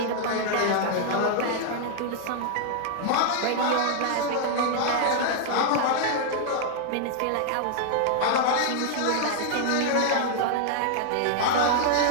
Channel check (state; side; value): different; both; correlation -0.01